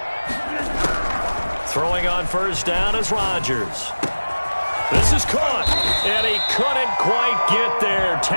Throwing on first down is Rodgers. This is caught, and he couldn't quite get there.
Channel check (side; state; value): both; inverted; correlation -1.00